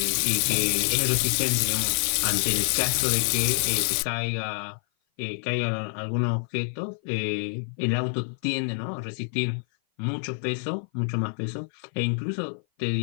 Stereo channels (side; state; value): right; silent; 56 dB below the other